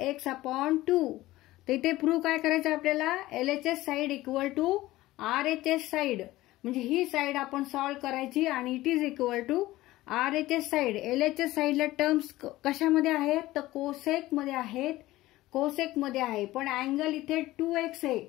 x upon 2. तर इथे प्रूव्ह काय करायचं आपल्याला LHS side equal to RHS side म्हणजे ही साइड आपण सॉल्व्ह करायची आणि it is equal to RHS side. LHS साइडला टर्म्स कशामध्ये आहेत तर कोसेक मध्ये आहेत, कोसेक मध्ये आहे पण अँगल इथे 2x आहे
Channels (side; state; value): right; quieter; 17.1 dB